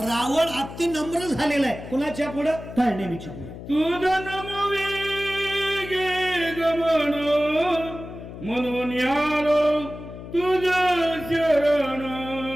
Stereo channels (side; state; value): left; noise; hum, 12 dB below the sound